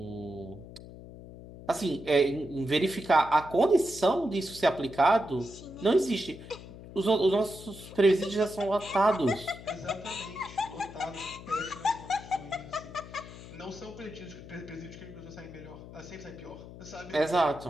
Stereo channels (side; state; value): left; noise; hum, 15 dB below the sound